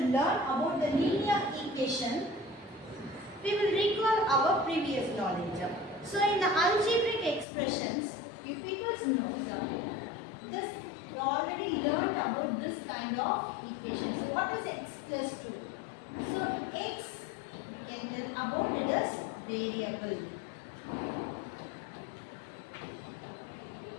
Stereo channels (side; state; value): right; drops out; at 7.5 s